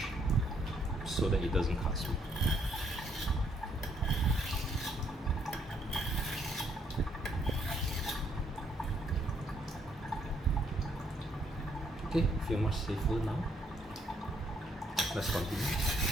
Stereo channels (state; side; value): normal; both; correlation 0.70